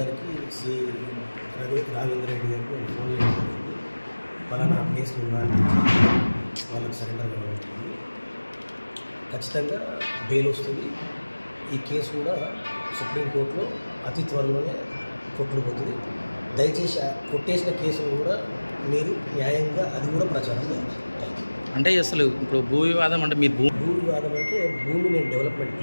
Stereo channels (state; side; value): inverted; both; correlation -1.00